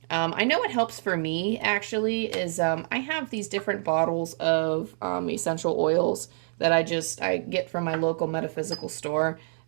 I know what helps for me actually is I have these different bottles of essential oils that I get from my local metaphysical store.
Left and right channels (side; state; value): left; silent; digital silence